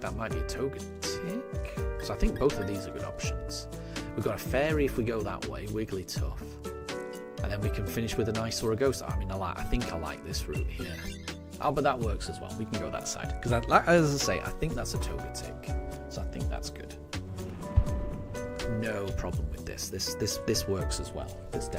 that might be a Togetic. So I think both of these are good options. We've got a Fairy if we go that way, Wigglytuff. And then we can finish with a nice or a Ghost. I mean, I think I like this route here. Oh, but that works as well. We can go that side. Because, as I say, I think that's a Togetic. So I think that's good. No problem with this. This works as well. This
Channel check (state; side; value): identical; both; correlation 1.00